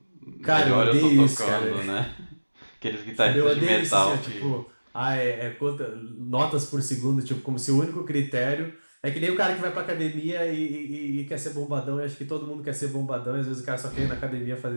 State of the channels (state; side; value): inverted; both; correlation -1.00